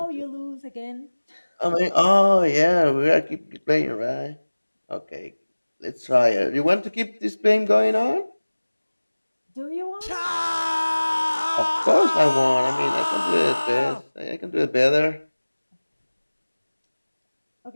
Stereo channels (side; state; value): both; inverted; correlation -1.00